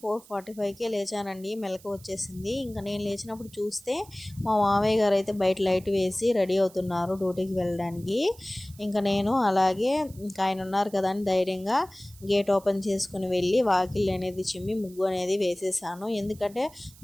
4:45కే లేచానండి. మెలకు వచ్చేసింది. ఇంకా నేను లేచినప్పుడు చూస్తే మా మామయ్య గారు అయితే బయట లైట్ వేసి రెడీ అవుతున్నారు డ్యూటీకి వెళ్ళడానికి. ఇంకా నేను అలాగే ఇంకా ఆయన ఉన్నారు కదా అని ధైర్యంగా గేట్ ఓపెన్ చేసుకుని వెళ్ళి వాకిల్ అనేది చిమ్మి ముగ్గు అనేది వేసేసాను. ఎందుకంటే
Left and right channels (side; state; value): right; noise; hiss, 23 dB below the sound